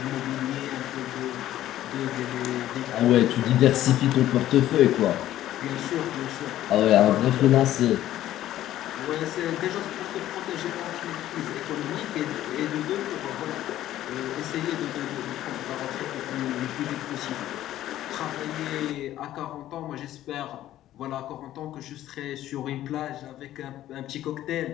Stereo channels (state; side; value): quieter; right; 13.3 dB